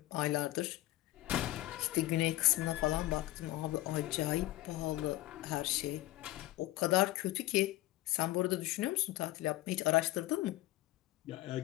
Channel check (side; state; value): right; quieter; 17.1 dB